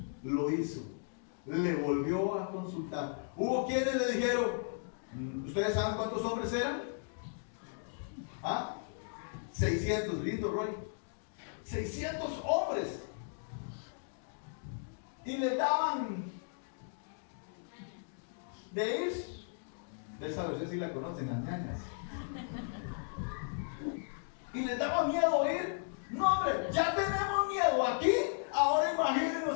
lo hizo. Le volvió a consultar. Hubo quienes le dijeron, ¿ustedes saben cuántos hombres eran? ¿Ah? 600, lindo Roy. 600 hombres. Y le daban de ir. Ustedes sí la conocen, las ñañas. Y les daba miedo ir. No, hombre, ya tenemos miedo aquí. Ahora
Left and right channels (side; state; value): right; silent; digital silence